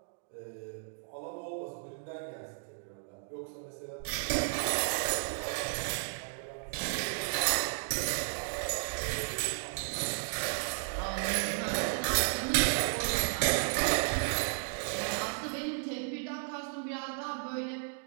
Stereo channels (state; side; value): silent; left; digital silence